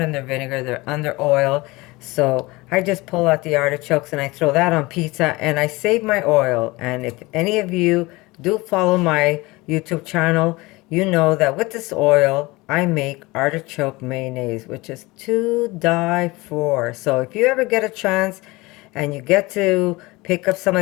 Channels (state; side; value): quieter; right; 22.3 dB